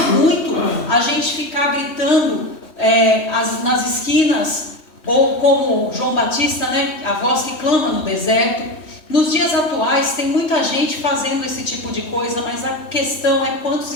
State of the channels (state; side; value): late; right; 3.2 ms